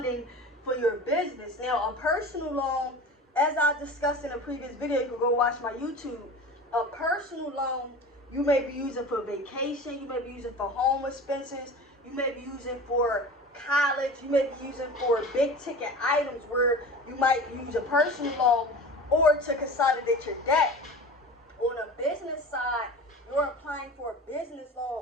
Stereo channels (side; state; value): both; normal; correlation 0.35